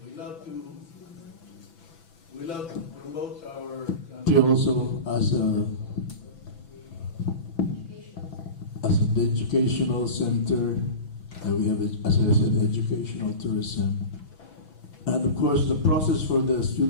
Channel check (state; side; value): late; right; 6.0 ms